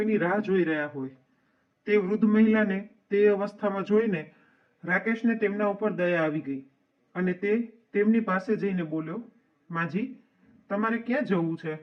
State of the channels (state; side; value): identical; both; correlation 1.00